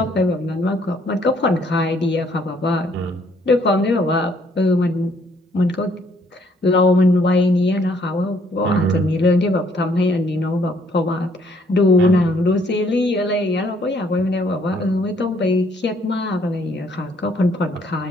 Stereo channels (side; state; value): both; normal; correlation 0.66